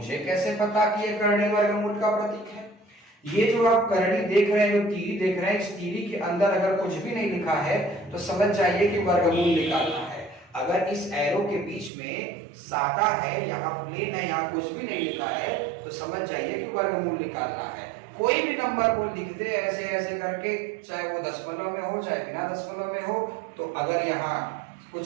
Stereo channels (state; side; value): drops out; left; at 11.9 s